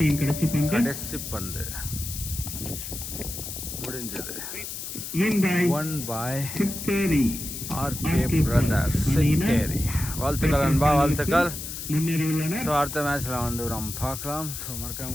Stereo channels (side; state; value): left; noise; hiss, 7 dB below the sound